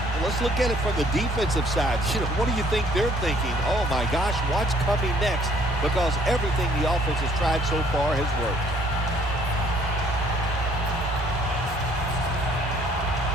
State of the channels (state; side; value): normal; both; correlation 0.61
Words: let's look at it from the defensive side. What do you think they're thinking? Oh, my gosh, what's coming next? Because everything the offense has tried so far has worked.